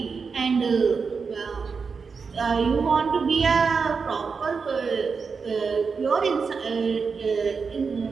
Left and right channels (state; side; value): quieter; left; 5.2 dB